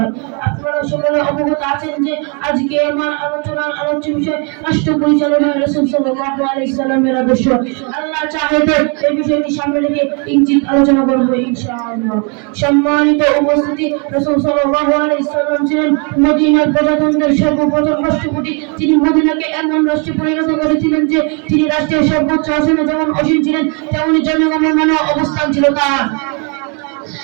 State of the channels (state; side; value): quieter; left; 35.6 dB